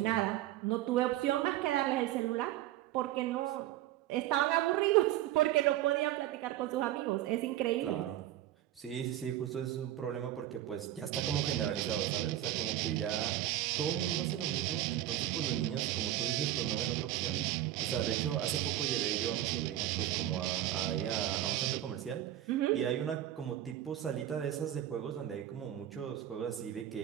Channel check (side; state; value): left; quieter; 13.0 dB